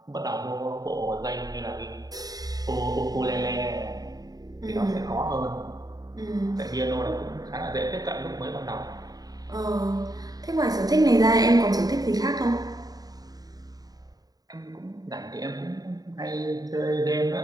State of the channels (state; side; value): late; left; 0.18 ms